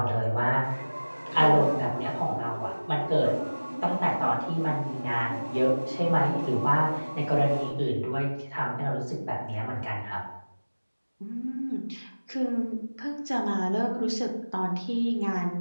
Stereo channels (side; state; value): both; inverted; correlation -1.00